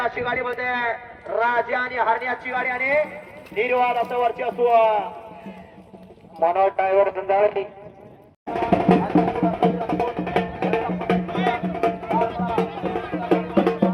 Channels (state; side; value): identical; both; correlation 1.00